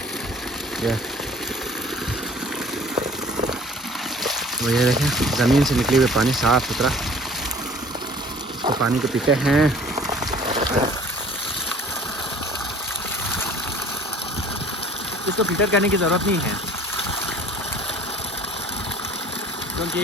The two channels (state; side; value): normal; both; correlation 0.49